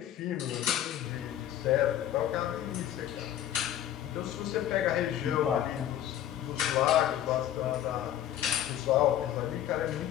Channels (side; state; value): right; quieter; 11.5 dB